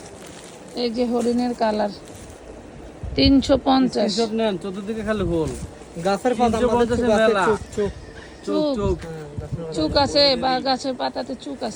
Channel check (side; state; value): both; identical; correlation 1.00